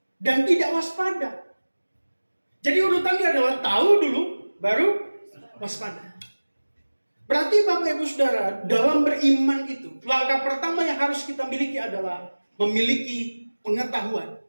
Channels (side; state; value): both; inverted; correlation -1.00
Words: dan tidak waspada. Jadi urutannya adalah tahu dulu, baru waspada. Berarti Bapak Ibu Saudara, dalam beriman itu, langkah pertama yang harus kita miliki adalah memiliki pengetahuan